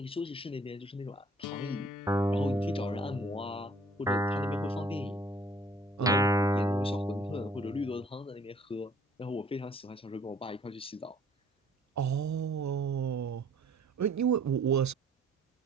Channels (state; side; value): normal; both; correlation 0.57